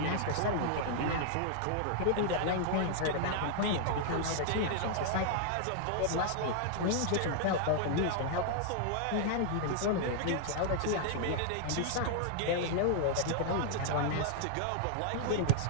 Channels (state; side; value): different; both; correlation -0.01